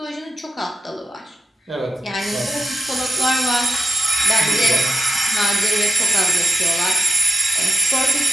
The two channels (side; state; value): both; normal; correlation 0.92